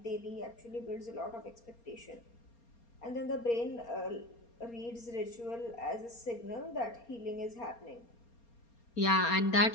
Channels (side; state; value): right; late; 4.3 ms